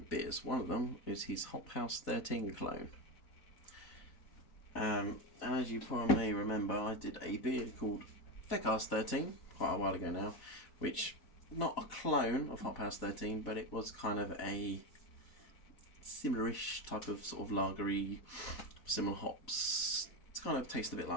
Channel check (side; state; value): right; late; 4.0 ms